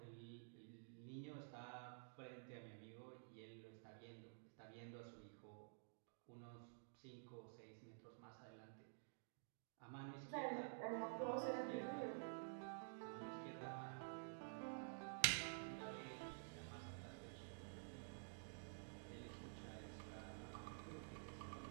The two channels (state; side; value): silent; left; digital silence